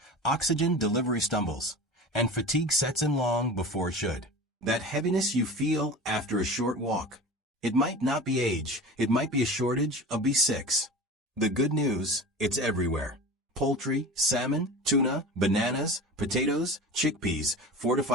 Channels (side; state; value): both; normal; correlation 0.34